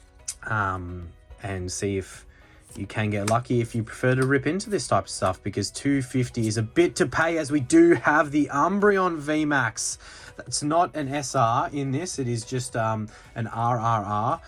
And see if you can get lucky if you prefer to rip into this type of stuff, because 250 is a bit to pay, as we do have the Umbreon Vmax. That's not an SR in this, it is just an RRR.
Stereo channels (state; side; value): identical; both; correlation 1.00